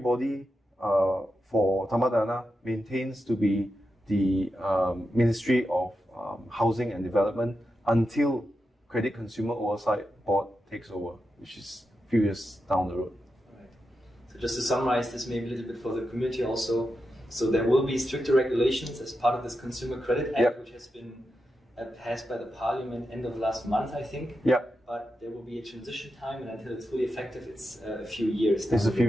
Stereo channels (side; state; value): both; normal; correlation 0.88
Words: for Tamadana maintains to be the Ministry of Housing and Development until Credit Consumer Oversight Board takes over, which is a few years down the road. Right. So just to summarize this maybe a little bit for the community also, so there will be stricter regulations as part of this Consumer Credit Act, which has been passed by the parliament end of last month, I think. Yeah. But there will be a transition time, and until it's fully effective, it's a few years. It's a few